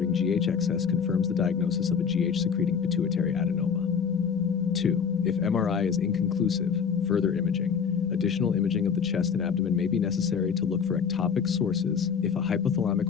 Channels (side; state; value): right; quieter; 6.7 dB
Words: GH excess confirms the diagnosis of a GH-secreting pituitary adenoma. 2. If MRI is inconclusive, further imaging. Additional imaging of the chest and abdomen may be necessary to look for ectopic sources if a